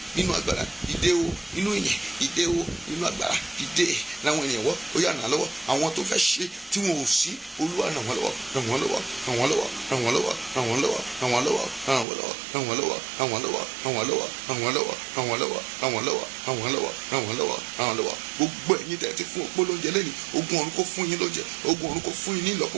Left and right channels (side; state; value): left; drops out; at 12.1 s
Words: nínú agbára dìde o nínú ìyẹn dìde o nínú agbára dìde láwọn ènìyàn wọ́ ó yá ràn lọ́wọ́ àwọn tó fẹ́ ṣe tí wọn ò sí olúwa ràn wọ́n lọ́wọ́ gbogbo ẹ̀yin tẹ́ ti fún òpó lóúnjẹ lẹ́nu ogun ọ̀run kó fún yín lóúnjẹ ogun ọ̀run kó fún yín ní ìlọ́po